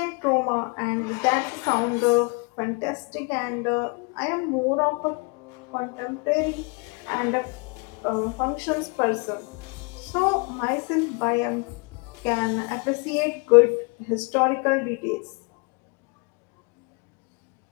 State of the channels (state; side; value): quieter; right; 32.7 dB